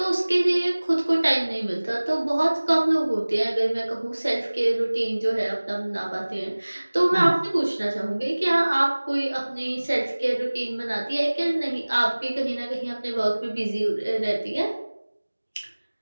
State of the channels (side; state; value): both; inverted; correlation -1.00